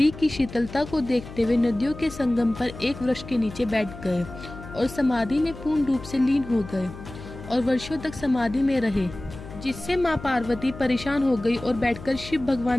की शीतलता को देखते हुए नदियों के संगम पर एक वृक्ष के नीचे बैठ गए और समाधि में पूर्ण रूप से लीन हो गए और वर्षों तक समाधि में रहे, जिससे माँ पार्वती परेशान हो गई और बैठकर शिव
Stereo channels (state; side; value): noise; left; hum, 14 dB below the sound